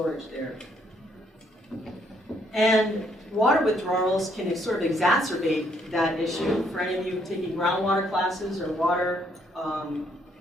there. And water withdrawals can sort of exacerbate that issue. For any of you taking groundwater classes or water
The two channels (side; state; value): both; normal; correlation 0.70